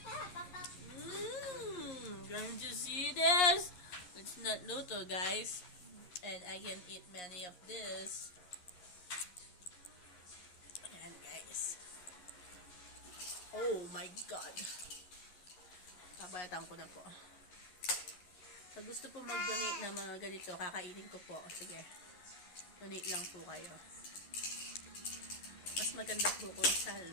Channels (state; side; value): late; right; 11 ms